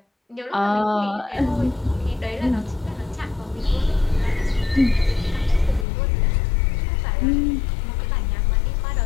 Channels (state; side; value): drops out; right; at 5.9 s